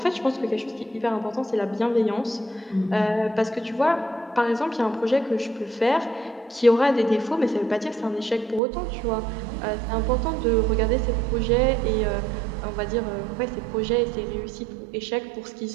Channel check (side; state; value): left; drops out; at 8.6 s